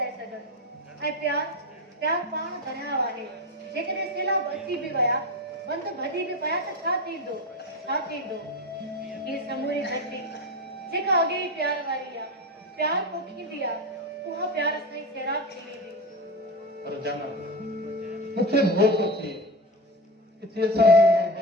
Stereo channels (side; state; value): both; normal; correlation 0.22